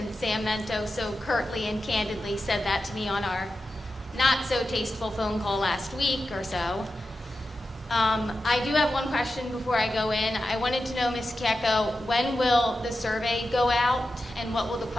Sam Mento so curtly and candidly said that to me on our not so tasteful phone call last week or so. I do have one question before I go in. I wanted to know, Ms. Kieko, when will the survey go out and what will the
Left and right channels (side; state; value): both; normal; correlation 0.91